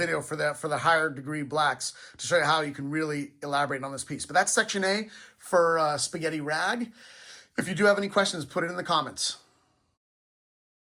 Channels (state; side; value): identical; both; correlation 1.00